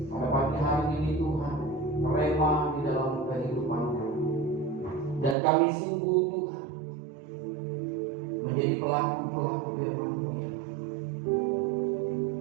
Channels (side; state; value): left; drops out; at 5.4 s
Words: pada pagi hari ini Tuhan rema di dalam kehidupan kami. Dan kami sungguh Tuhan menjadi pelaku-pelaku firman-Mu ya.